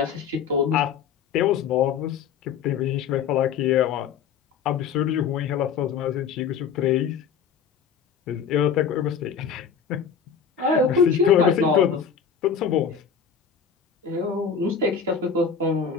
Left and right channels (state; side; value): quieter; right; 6.9 dB